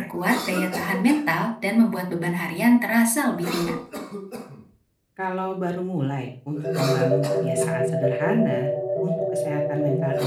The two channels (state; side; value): identical; both; correlation 1.00